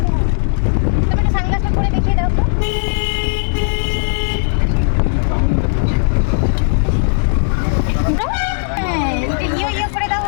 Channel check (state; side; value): silent; right; digital silence